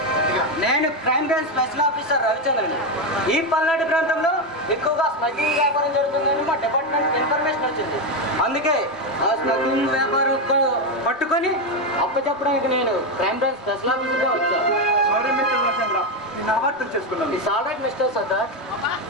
నేను క్రైమ్ బ్రాంచ్ స్పెషల్ ఆఫీసర్ రవిచంద్రని ఈ పల్నాడు ప్రాంతంలో ఎక్కువగా స్మగ్లింగ్ వ్యాపారం జరుగుతుందని మా డిపార్ట్మెంట్ ఇన్ఫర్మేషన్ వచ్చింది అందుకే ఆ స్మగ్లింగ్ వ్యాపారం పట్టుకొని అప్పచెప్పడానికి నేను క్రైమ్ బ్రాంచ్ స్పెషల్ ఆఫీసర్గా వచ్చాను సారీ మిస్టర్ రవిచంద్ర నేను అపార్థం చేసుకున్నాను it's all right mister Sardar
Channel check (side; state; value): both; normal; correlation 0.09